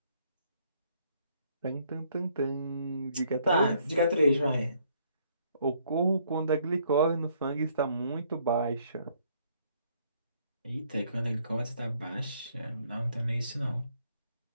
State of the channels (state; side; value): inverted; both; correlation -0.67